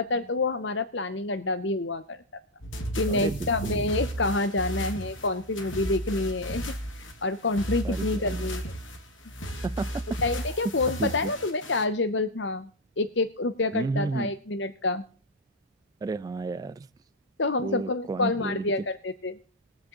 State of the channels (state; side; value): normal; both; correlation 0.02